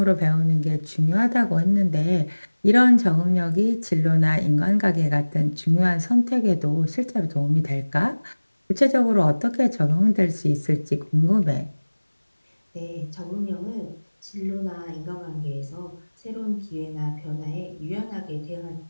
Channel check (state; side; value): inverted; both; correlation -1.00